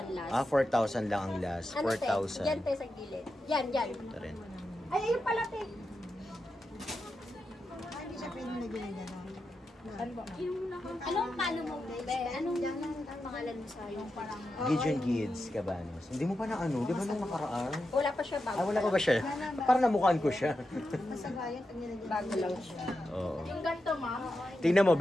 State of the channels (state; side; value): normal; both; correlation 0.89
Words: last. 4,000 lang ang last. Ano tayo? 4,000. Yan tayo sa gilid. Yan. Ito rin. Ay, ayun pala, te. Hindi siya pwede na ginagano. Anong palo mo, be? Anong pangalan mo sa yung parang... Gideon Gids, Cabanos. Hindi mo pa na ano? Di ba nung nakaraan? Wala pa siya bago. Ah, wala pa ba siya? Parang namukhaan ko siya. Masagayan pag nilagyan. Bago lang siya. Oo. Yung ganito, ma'am. Tingnan mo,